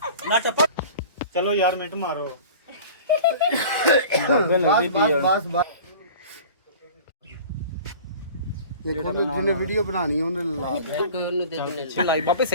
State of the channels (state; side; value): inverted; both; correlation -0.42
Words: ਨਾ ਚੱਪ ਚਲੋ ਯਾਰ ਮਿੰਟ ਮਾਰੋ। बस बस ਜਿਹਨੇ ਵੀਡੀਓ ਬਣਾਣੀ ਉਹਨੇ ਲਾ ਦੇ ਲਾਈ ਬਾਪੇ